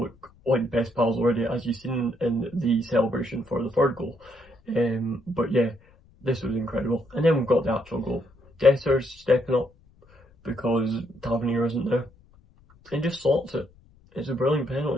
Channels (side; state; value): left; noise; rumble, 28 dB below the sound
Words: like best pals already, as you've seen in the celebration for the third goal. But yeah, this was incredible. And then we've got the actual goal. Dessers stepping up because Tavernier isn't there, and just slots it. It's a brilliant